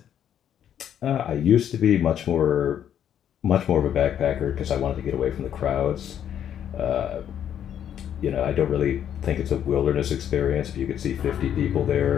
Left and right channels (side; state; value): right; quieter; 9.7 dB